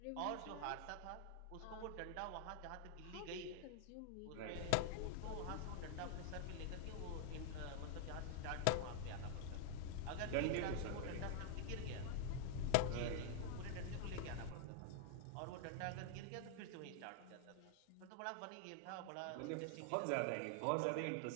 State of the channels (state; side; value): different; both; correlation 0.00